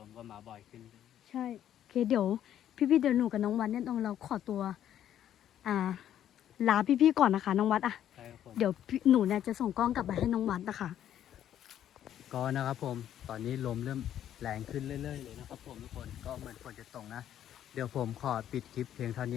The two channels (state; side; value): quieter; right; 10.8 dB